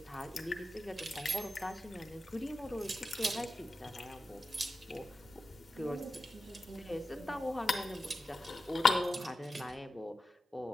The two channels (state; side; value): normal; both; correlation 0.92